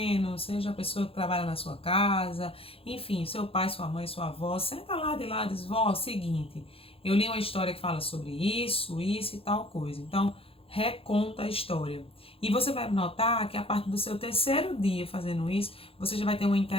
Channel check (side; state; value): right; late; 0.27 ms